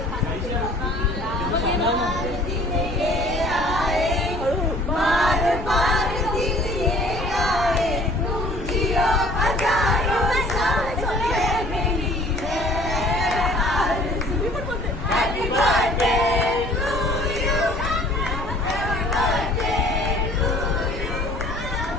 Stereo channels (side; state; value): left; noise; rumble, 12 dB below the sound